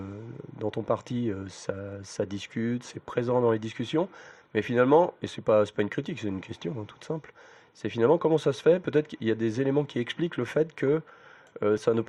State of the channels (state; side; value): identical; both; correlation 1.00